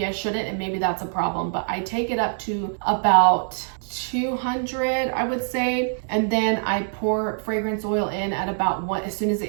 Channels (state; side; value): silent; left; digital silence